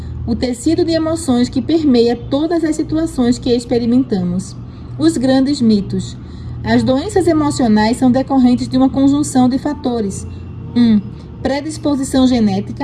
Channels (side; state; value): both; identical; correlation 1.00